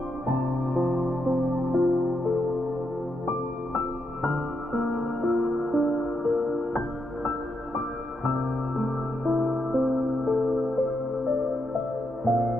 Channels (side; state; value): both; normal; correlation 0.82